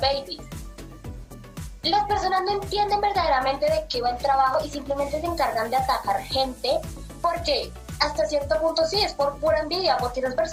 Las personas no entienden verdaderamente de qué va el trabajo y simplemente se encargan de atacar gente porque hasta cierto punto sí es por pura envidia, porque esas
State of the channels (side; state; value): both; identical; correlation 1.00